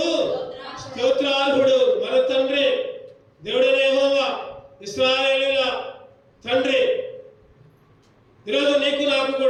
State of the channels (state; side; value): identical; both; correlation 1.00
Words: స్తోత్రార్హుడు. మన తండ్రి దేవుడైన యెహోవా, ఇశ్రాయేలీయుల తండ్రి. ఈరోజు నీకు నాకు